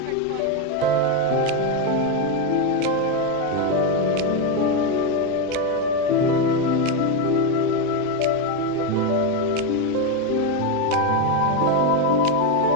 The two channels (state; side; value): different; both; correlation 0.03